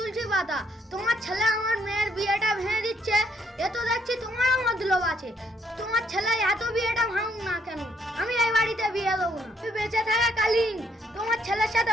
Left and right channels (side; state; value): both; normal; correlation 0.70